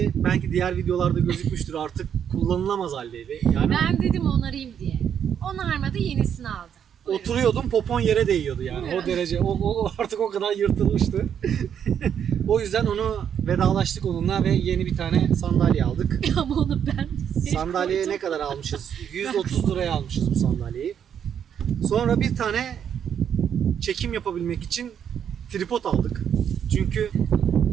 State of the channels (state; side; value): quieter; left; 8.5 dB